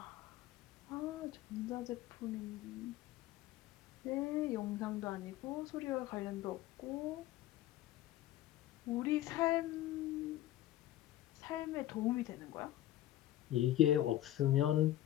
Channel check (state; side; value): quieter; right; 13.9 dB